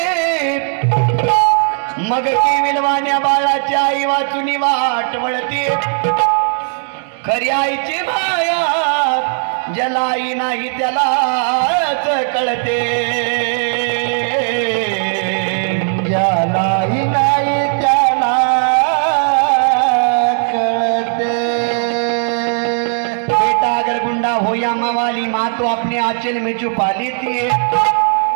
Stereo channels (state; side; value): silent; left; 67 dB below the other